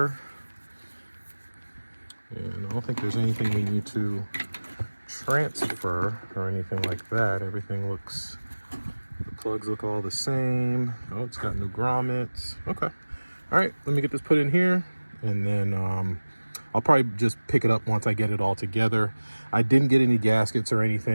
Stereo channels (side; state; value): both; inverted; correlation -1.00